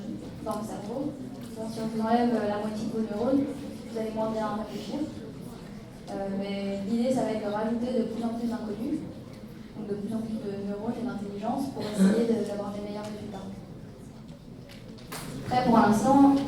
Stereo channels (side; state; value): both; identical; correlation 1.00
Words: dans le cerveau. Donc, si on vous enlève la moitié de vos neurones, vous allez moins bien réfléchir. Mais l'idée, ça va être de rajouter de plus en plus d'inconnus, donc de plus en plus de neurones et d'intelligence pour essayer d'avoir des meilleurs résultats. Après, pour l'instant,